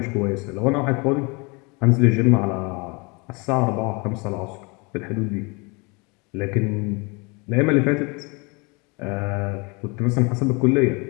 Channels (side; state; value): right; quieter; 29.3 dB